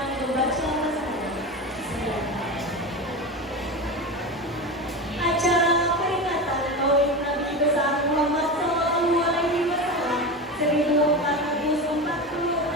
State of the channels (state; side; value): normal; both; correlation 0.23